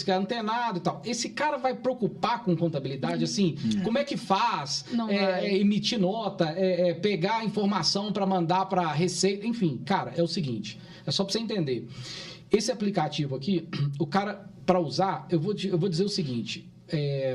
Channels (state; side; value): identical; both; correlation 1.00